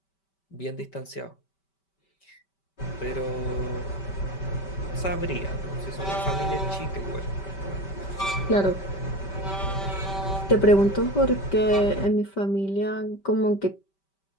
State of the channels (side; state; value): right; late; 5.2 ms